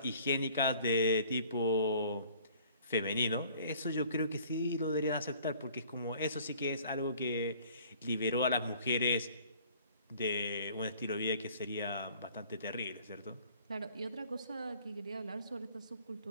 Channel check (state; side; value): inverted; both; correlation -0.54